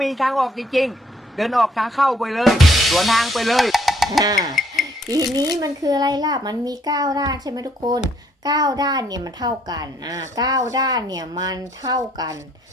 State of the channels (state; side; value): normal; both; correlation 0.66